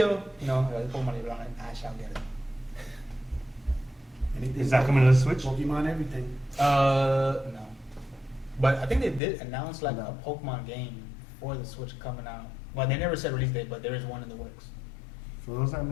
Pokemon is on it. I shall get it. Anything Is that coming to the Switch? Pokemon, everything. No. But I think they did announce like No. a Pokemon game for the Switch coming out. Well, they never said release date, but there is one in the works. For those that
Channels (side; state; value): right; drops out; at 9.2 s